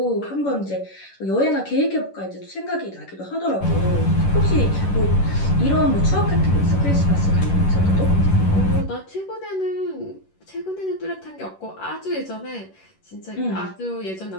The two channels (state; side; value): late; right; 11 ms